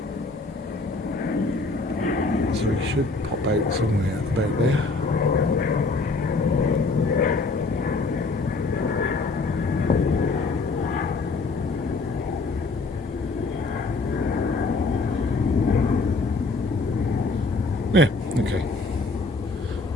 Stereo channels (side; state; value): right; quieter; 3.6 dB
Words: is. So he should pop out somewhere about there. Yeah, okay.